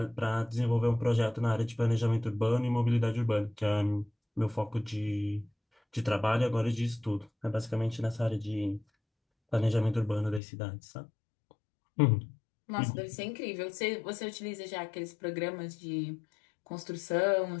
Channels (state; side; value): drops out; right; at 10.4 s